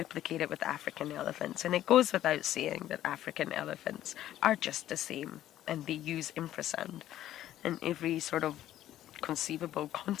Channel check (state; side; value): quieter; right; 12.8 dB